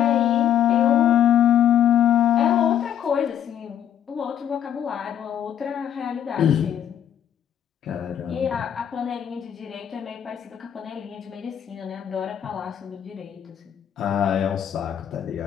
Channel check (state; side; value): quieter; right; 10.0 dB